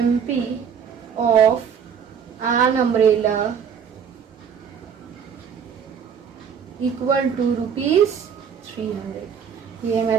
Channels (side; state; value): left; quieter; 7.3 dB